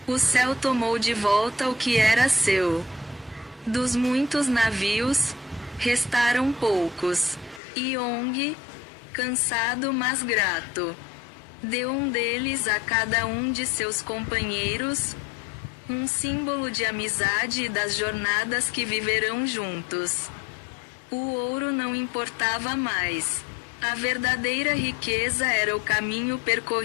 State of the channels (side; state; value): right; drops out; at 7.6 s